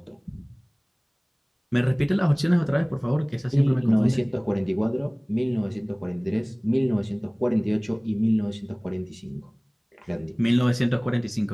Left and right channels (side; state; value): both; identical; correlation 1.00